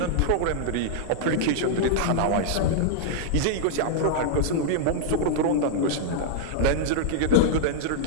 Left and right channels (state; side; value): different; both; correlation -0.01